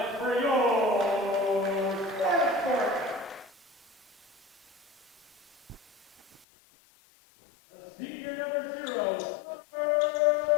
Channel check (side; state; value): right; drops out; at 6.5 s